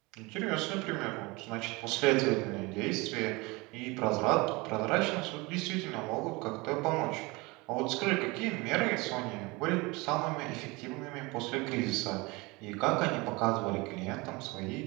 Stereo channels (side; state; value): left; quieter; 24.7 dB